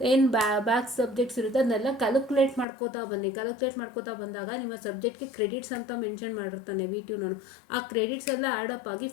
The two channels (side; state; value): right; drops out; at 2.7 s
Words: ಏನು ಬ್ಯಾಕ್ ಸಬ್ಜೆಕ್ಟ್ಸ್ ಇರುತ್ತೆ ಅದನ್ನೆಲ್ಲ ಕ್ಯಾಲ್ಕುಲೇಟ್ ಮಾಡ್ಕೋತಾ ಬನ್ನಿ. ಕ್ಯಾಲ್ಕುಲೇಟ್ ಮಾಡ್ಕೋತಾ ಬಂದಾಗ ನಿಮ್ಮ ಸಬ್ಜೆಕ್ಟ್ಗೆ ಕ್ರೆಡಿಟ್ಸ್ ಅಂತ ಮೆನ್ಷನ್ ಮಾಡಿರ್ತಾನೆ VTU. ಆ ಕ್ರೆಡಿಟ್ಸ್ ಎಲ್ಲ ಆ್ಯಡಪ್ ಆಗಿ